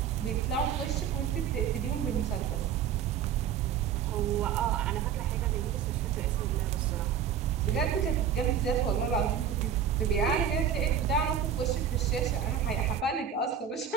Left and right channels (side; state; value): left; quieter; 8.2 dB